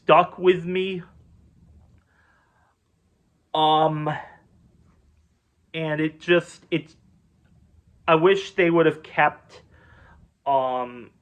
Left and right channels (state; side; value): identical; both; correlation 1.00